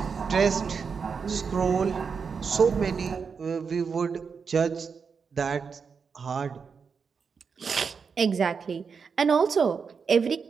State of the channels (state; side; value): quieter; left; 5.8 dB